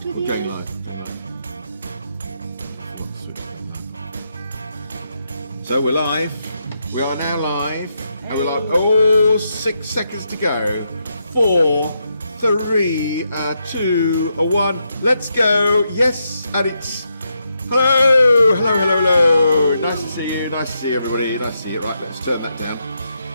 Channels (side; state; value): both; inverted; correlation -0.82